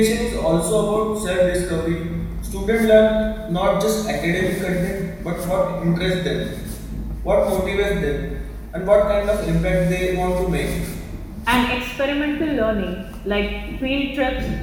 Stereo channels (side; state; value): both; identical; correlation 1.00